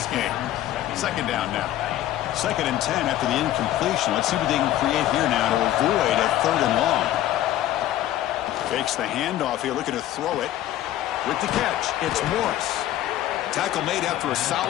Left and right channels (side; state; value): right; quieter; 13.4 dB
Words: game. Second down now. 2nd and 10 after the incompletion. Let's see what they can create here now to avoid a third and long. Takes the handoff here, looking to throw it. With the catch, it's Morris. Tackle made after a